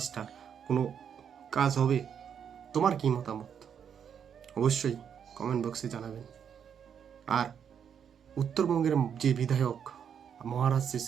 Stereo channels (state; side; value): quieter; left; 7.9 dB